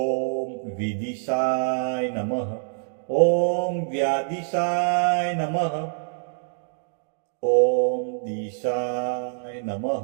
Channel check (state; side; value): silent; left; digital silence